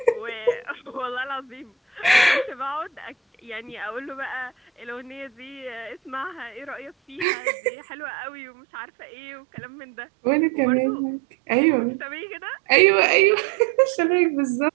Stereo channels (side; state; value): left; drops out; at 7.2 s